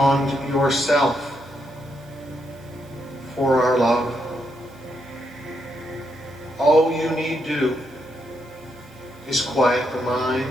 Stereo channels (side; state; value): right; noise; hiss, 28 dB below the sound